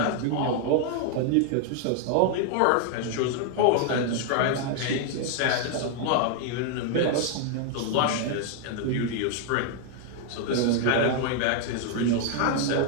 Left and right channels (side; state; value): both; different; correlation 0.00